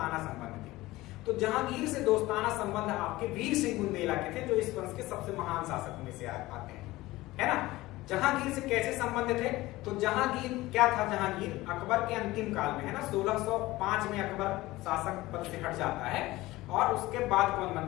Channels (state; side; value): quieter; right; 18.6 dB